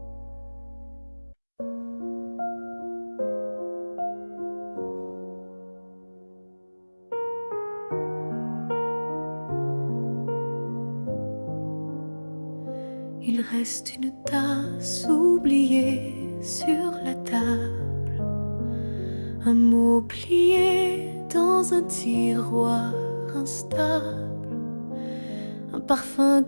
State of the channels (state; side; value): inverted; both; correlation -1.00